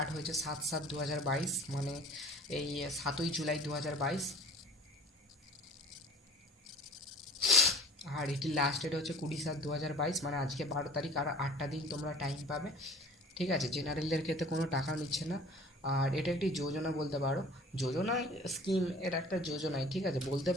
হয়েছে 7/7/2022, মানে এই 7ই জুলাই 2022। আর এটির লাস্ট ডেট হচ্ছে 20/7/2022, মানে আজকে 12 তারিখ, আর 8টা দিন তোমরা টাইম পাবে। ঠিক আছে, জেনারেলদের ক্ষেত্রে কোনো টাকা নিচ্ছে না। আর এটা একটি যোজনা বলতে পারো, যোজনা স্কিম, এটা একটা যোজনাই। ঠিক আছে, বলতে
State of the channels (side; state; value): both; normal; correlation 0.46